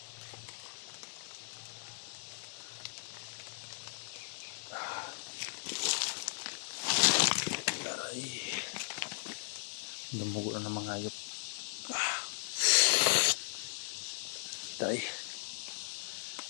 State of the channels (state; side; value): silent; right; digital silence